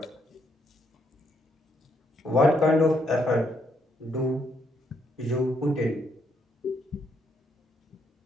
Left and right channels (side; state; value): both; normal; correlation 0.74